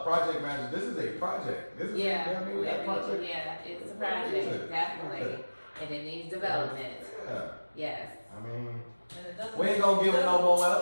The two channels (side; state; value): both; inverted; correlation -1.00